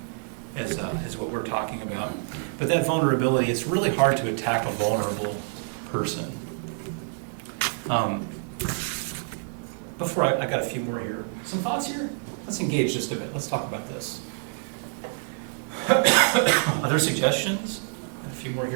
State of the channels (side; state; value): left; silent; 60 dB below the other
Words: as what we're talking about. But that vulnerability, it's really hard to attack a vulnerable person. Before I got a few more here. Some thoughts here? Let's engage just a bit. Let's talk about this. Other suggestions? A few more